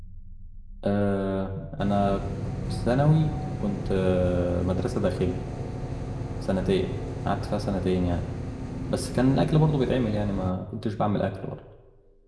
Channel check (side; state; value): both; identical; correlation 1.00